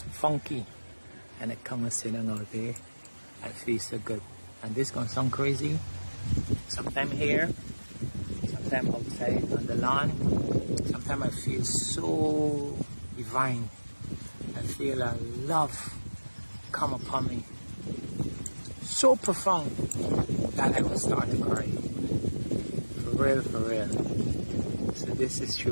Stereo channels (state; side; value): inverted; both; correlation -1.00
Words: funky and I come and sitting out there. I feel so good. And this gonna sound crazy. Sometime here, sometime outside on the lawn. Sometimes I feel so divine. I feel a love come upon me. So profound that I will start to cry. For real. So this is